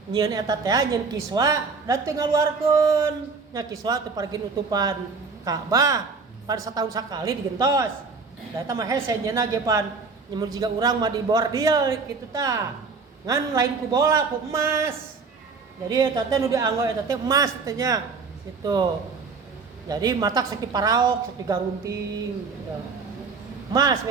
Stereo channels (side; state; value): left; quieter; 4.7 dB